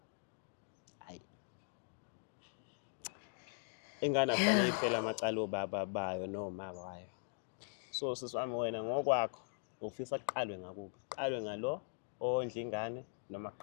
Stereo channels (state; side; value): silent; right; digital silence